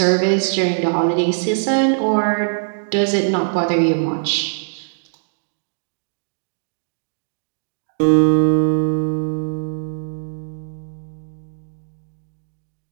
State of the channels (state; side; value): silent; left; digital silence